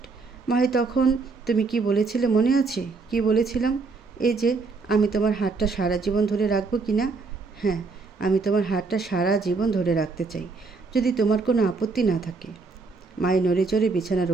মাহি, তখন তুমি কি বলেছিলে মনে আছে? কি বলেছিলাম? এই যে আমি তোমার হাতটা সারা জীবন ধরে রাখবো কি না? হ্যাঁ, আমি তোমার হাতটা সারা জীবন ধরে রাখতে চাই, যদি তোমার কোনো আপত্তি না থাকে। মাহি নড়ে চড়ে বিছানার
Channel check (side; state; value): left; quieter; 4.2 dB